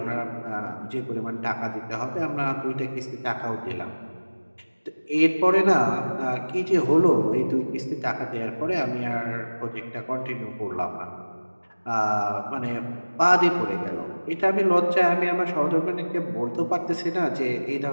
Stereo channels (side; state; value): both; inverted; correlation -1.00